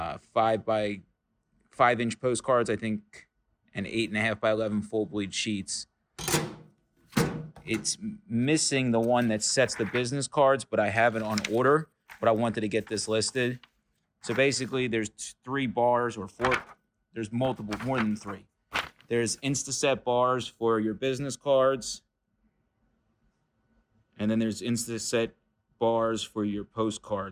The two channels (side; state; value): both; identical; correlation 1.00